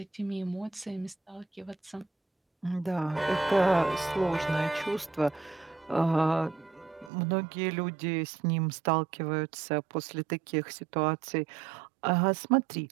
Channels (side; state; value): left; drops out; at 7.1 s